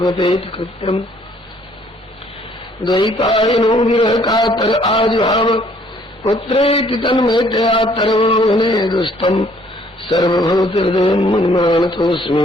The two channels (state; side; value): normal; both; correlation 0.62